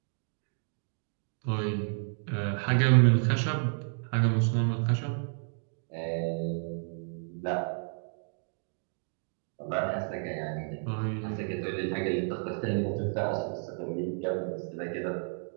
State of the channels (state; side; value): silent; left; 57 dB below the other